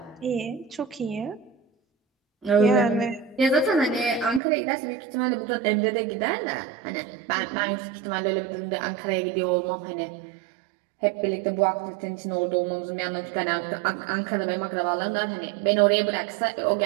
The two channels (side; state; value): left; drops out; at 4.4 s